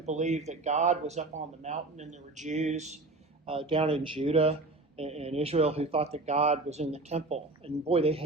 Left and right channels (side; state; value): left; quieter; 3.1 dB